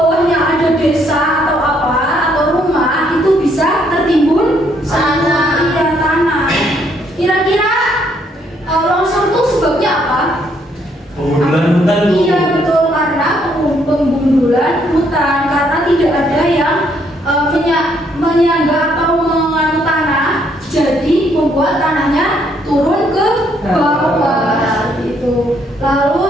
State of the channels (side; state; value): both; normal; correlation 0.70